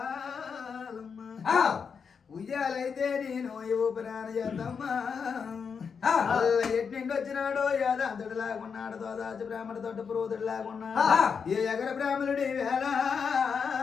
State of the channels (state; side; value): quieter; right; 6.1 dB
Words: ఉయ్యాలైతే నేను ఊపిరాన చేద్దమ్మా ఎట్నిండి వచ్చినాడో యాదాంతుడు లాగున్నాడు తోదాచి బ్రాహ్మణ తోట పురోధుడు లాగున్నాడు ఏ ఎగర బ్రాహ్మణుడి వేళ